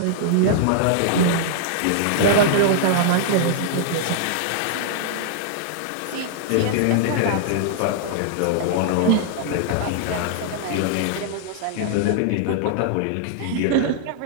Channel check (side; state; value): both; different; correlation -0.01